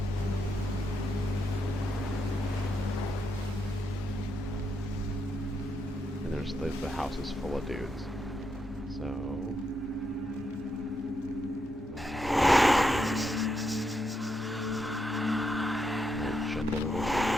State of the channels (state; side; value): normal; both; correlation 0.81